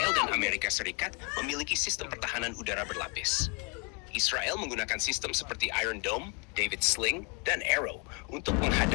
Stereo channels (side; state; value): right; quieter; 33.4 dB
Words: dan Amerika Serikat memiliki sistem pertahanan udara berlapis. Israel menggunakan sistem seperti Iron Dome, David Sling, dan Arrow untuk